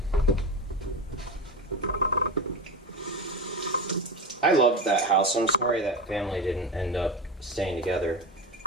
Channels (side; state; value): both; normal; correlation 0.22